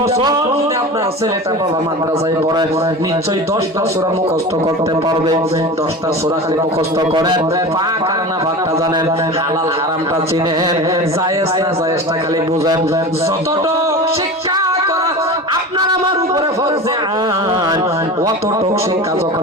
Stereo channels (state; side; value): normal; both; correlation 0.31